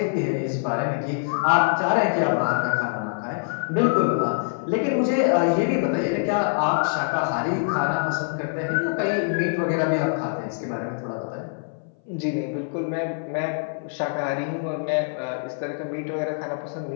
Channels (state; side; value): silent; right; 60 dB below the other